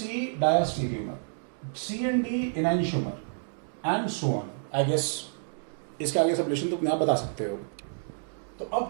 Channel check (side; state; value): left; silent; digital silence